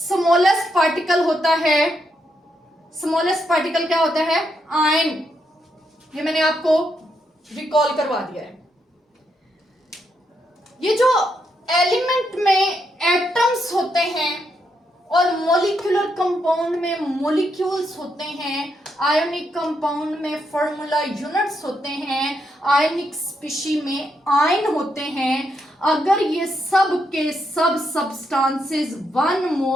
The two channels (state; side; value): normal; both; correlation 0.80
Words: पार्टिकल होता है, स्मॉलेस्ट पार्टिकल क्या होता है? आयन। ये मैंने आपको रिकॉल करवा दिया है। ये जो एलिमेंट में एटम्स होते हैं और मॉलिक्यूलर कंपाउंड में मॉलिक्यूल्स होते हैं, आयोनिक कंपाउंड में फॉर्मूला यूनिट्स होते हैं, आयनिक स्पीशी में आयन होते हैं। अगर ये सब के सब सब्सटेंसेस 1